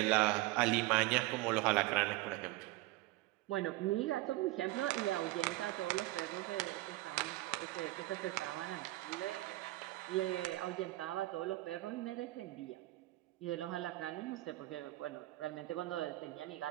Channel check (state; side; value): quieter; left; 18.4 dB